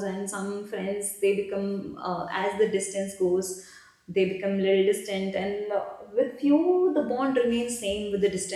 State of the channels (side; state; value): both; identical; correlation 1.00